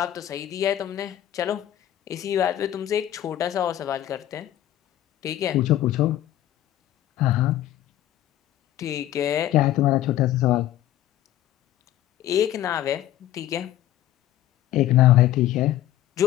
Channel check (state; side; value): quieter; right; 13.0 dB